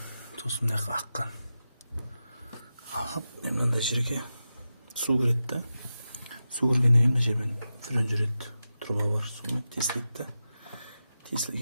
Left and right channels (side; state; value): both; inverted; correlation -0.91